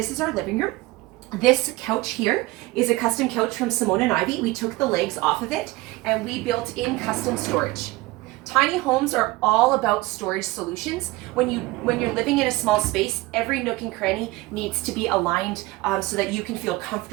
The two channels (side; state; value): left; quieter; 20.4 dB